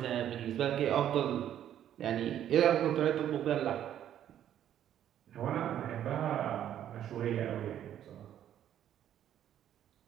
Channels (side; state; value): left; quieter; 10.7 dB